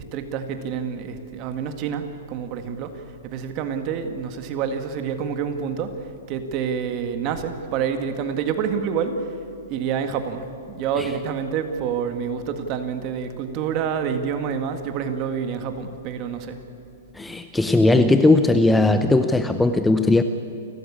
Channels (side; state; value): both; normal; correlation 0.50